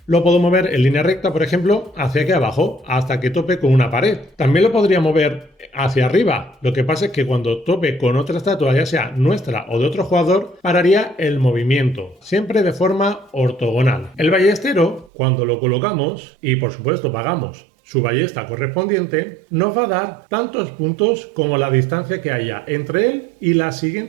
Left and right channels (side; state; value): left; drops out; at 15.1 s